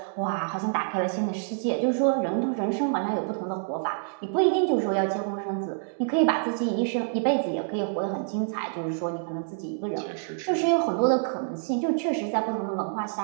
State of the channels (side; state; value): left; silent; digital silence